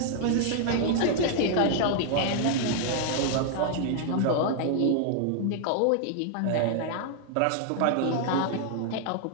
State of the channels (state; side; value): different; both; correlation 0.00